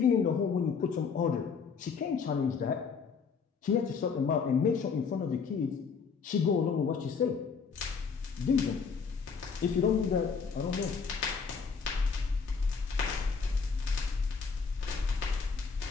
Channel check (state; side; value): quieter; right; 5.6 dB